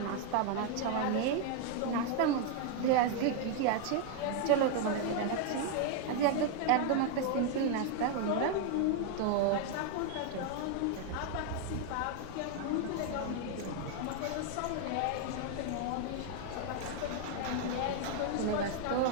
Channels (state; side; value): different; both; correlation 0.00